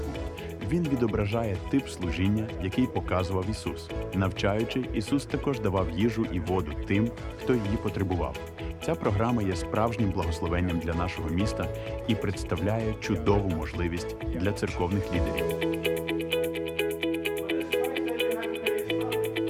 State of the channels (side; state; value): both; identical; correlation 1.00